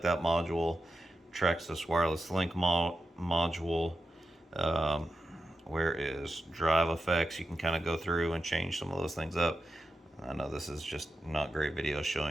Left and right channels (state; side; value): normal; both; correlation 0.91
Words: that module. Traxxas wireless link module. Where is drive effects? You can kind of go through and change some of those things up. I know this is just not great video